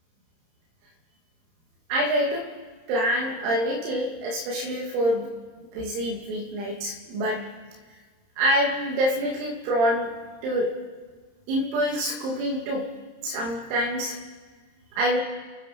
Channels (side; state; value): left; late; 30 ms